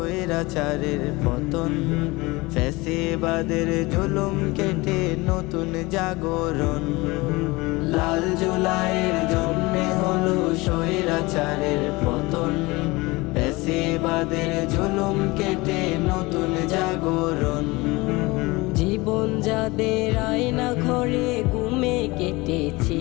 পতন, ফ্যাসিবাদের জুলুম কেটে নতুন জাগরণ। লাল জুলাইয়ের জন্যে হলো স্বৈরাচারের পতন, ফ্যাসিবাদের জুলুম কেটে নতুন জাগরণ। জীবন যাদের আয়না ঘরে ঘুমে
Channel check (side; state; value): right; quieter; 22.9 dB